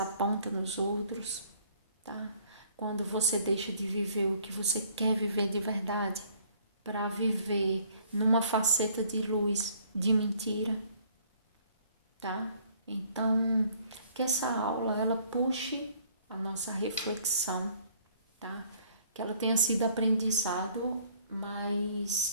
nos outros, tá? Quando você deixa de viver o que você quer viver de verdade, para viver numa faceta de luz, de mentira, tá? Então, que essa aula ela puxe a nossa reflexão, tá? Que ela tenha sido aprendizado,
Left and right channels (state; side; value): inverted; both; correlation -0.59